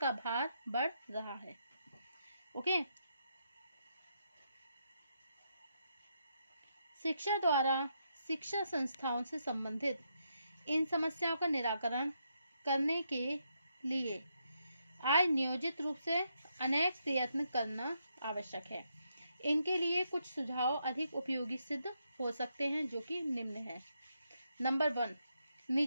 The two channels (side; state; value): both; inverted; correlation -0.80